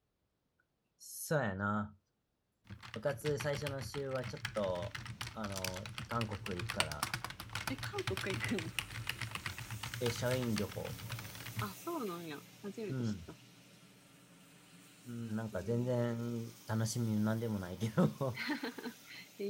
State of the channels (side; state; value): both; identical; correlation 1.00